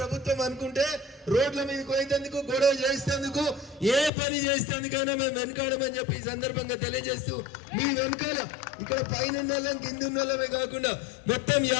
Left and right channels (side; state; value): right; drops out; at 4.1 s